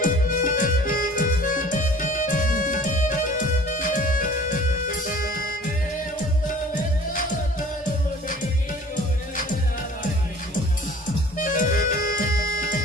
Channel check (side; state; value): both; normal; correlation 0.48